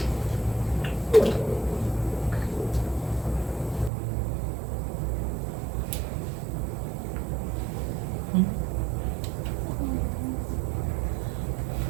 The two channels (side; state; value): left; drops out; at 3.9 s